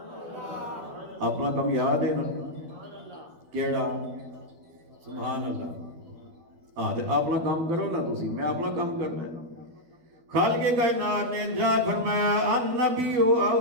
اپنا کم یاد ہے نا کیڑا؟ سبحان اللہ۔ اپنا کام کرو نا تسی، میں اپنا کام کرنا ہے۔ خالق کائنات نے ارشاد فرمایا النبی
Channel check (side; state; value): left; late; 12 ms